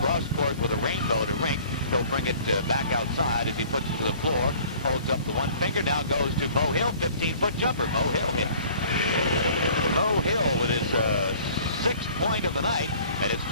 with a rainbow to Rink. He'll bring it back outside as he puts it to the floor. Holds up the one finger. Now goes to Mo Hill. 15-foot jumper. Mo Hill hits. Mo Hill with his sixth point of the night, and it's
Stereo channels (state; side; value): inverted; both; correlation -0.51